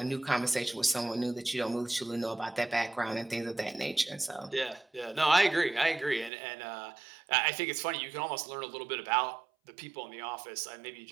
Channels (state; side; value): drops out; left; at 6.3 s